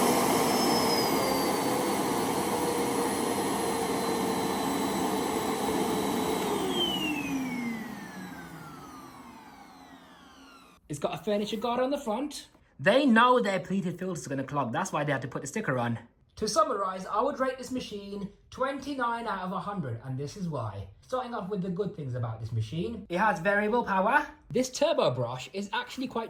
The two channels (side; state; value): both; identical; correlation 1.00